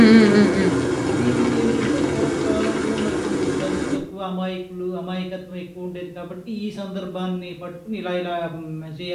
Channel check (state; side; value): identical; both; correlation 1.00